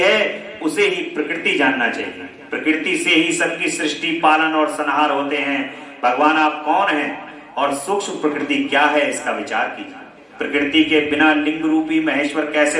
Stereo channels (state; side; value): identical; both; correlation 1.00